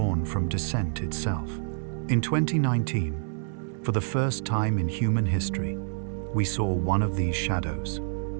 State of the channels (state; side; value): silent; left; 60 dB below the other